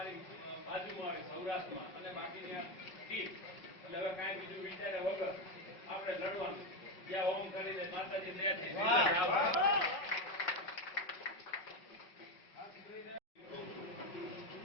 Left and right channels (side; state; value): right; late; 5.4 ms